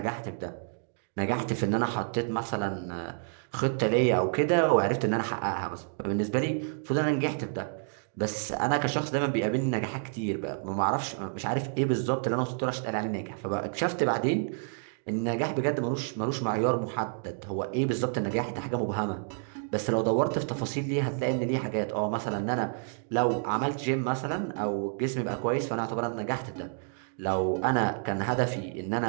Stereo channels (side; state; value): left; silent; digital silence